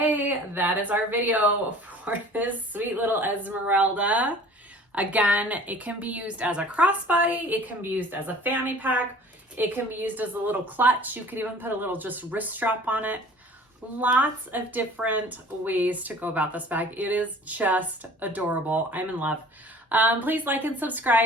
that is our video for this sweet little Esmerelda. Again, it can be used as a crossbody, it can be used as a fanny pack, it can be used as a little clutch. You could even put a little just wrist strap on it. Lots of different ways to go about this bag. It is just adorable. I'm in love. Please like and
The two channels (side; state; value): both; normal; correlation 0.47